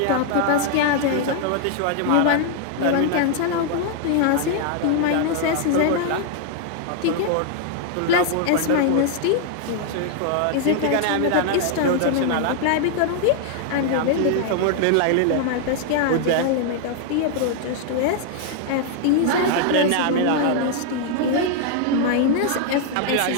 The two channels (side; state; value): both; different; correlation 0.00